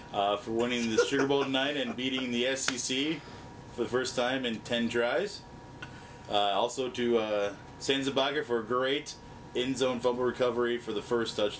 For winning the Sugar Bowl tonight and beating the SEC for the first time in 10 tries. Also to Sanzabaga for a great in-zone fumble recovery for the first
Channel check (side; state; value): both; identical; correlation 1.00